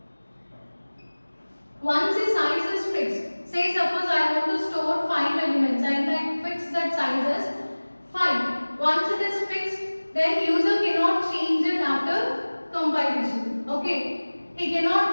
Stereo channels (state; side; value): inverted; both; correlation -1.00